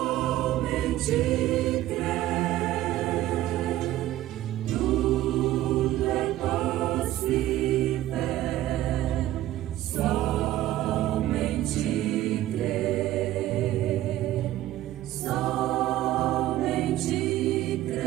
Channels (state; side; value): quieter; left; 14.4 dB